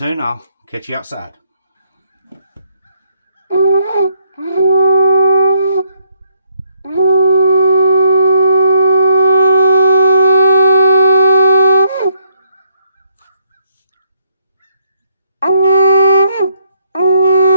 I'll catch you outside.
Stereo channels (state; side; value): inverted; both; correlation -0.71